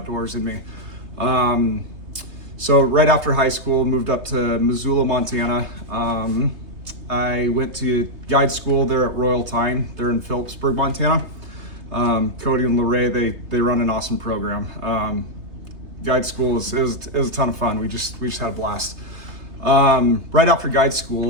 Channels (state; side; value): late; left; 3.2 ms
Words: in me. So right after high school, moved up to Missoula, Montana. I went to guide school there at Royal Tyne. They're in Phillipsburg, Montana. Cody and Lorraine, they run an awesome program. Guide school it was a ton of fun. We just had a blast. Right after guide